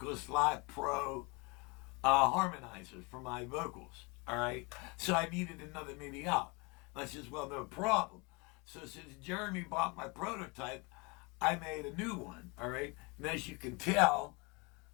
Live Pro harmonizer for my vocals, all right? So I needed another MIDI out. And I says, well, no problem. So since Jeremy bought my prototype, I made a new one, all right? And as you can tell,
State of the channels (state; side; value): quieter; right; 28.8 dB